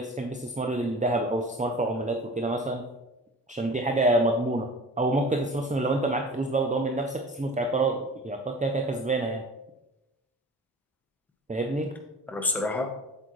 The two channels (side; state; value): both; normal; correlation 0.40